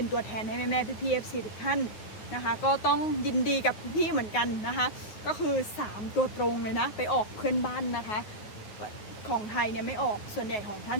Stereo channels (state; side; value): late; right; 9.5 ms